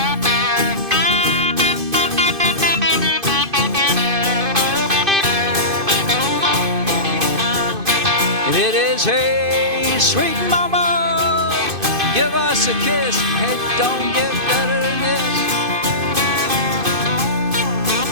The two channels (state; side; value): late; left; 2.5 ms